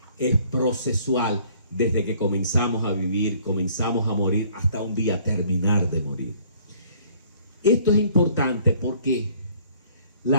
es procesual. Desde que comenzamos a vivir, comenzamos a morir, hasta un día terminar de morir. Esto es importante porque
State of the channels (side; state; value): both; inverted; correlation -0.59